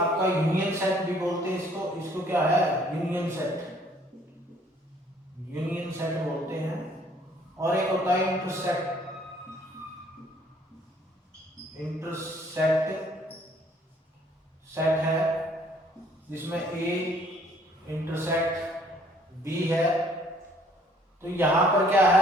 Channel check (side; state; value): both; normal; correlation 0.61